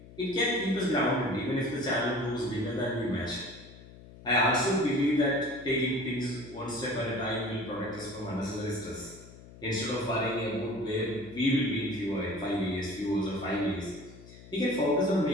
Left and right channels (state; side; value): noise; left; hum, 19 dB below the sound